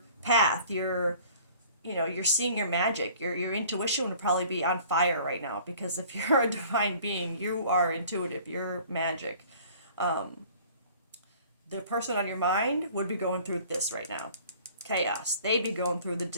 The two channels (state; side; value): inverted; both; correlation -0.50